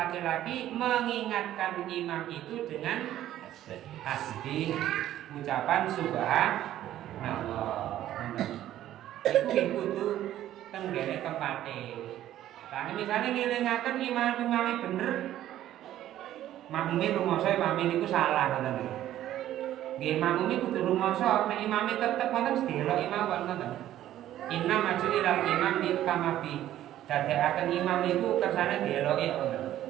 mengingatkan imam itu dengan tasbih, ucapan subhanallah. Iku tuh tenggene tempate. Lah misalnya ngelingaken imam-imame bener, makmume rumoso imame niku salah ngoten. Nggih makmume kudu rumoso, nek imame tetep wonten sedelok imam wonten. Inna maju ilal imam di kamabi. Dadekaken imam niku kersane dieloki ngoten.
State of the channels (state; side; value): quieter; left; 12.8 dB